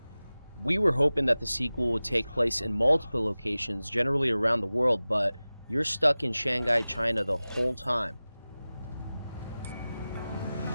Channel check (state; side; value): inverted; both; correlation -0.97